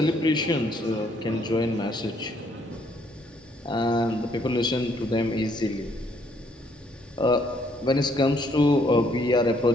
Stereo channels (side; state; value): both; normal; correlation 0.68